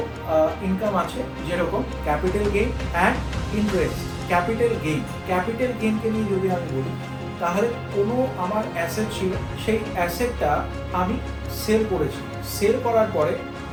ইনকাম আছে, যেরকম capital gain and interest. Capital গেইনকে নিয়ে যদি আমি বলি, তাহলে কোনো আমার অ্যাসেট ছিল, সেই অ্যাসেটটা আমি সেল করেছি, সেল করার পরে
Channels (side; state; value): both; identical; correlation 1.00